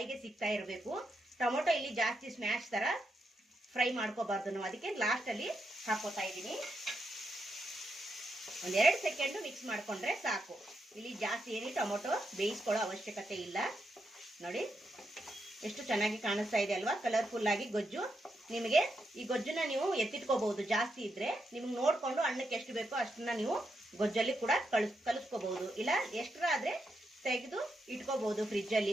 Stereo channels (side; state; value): both; normal; correlation 0.83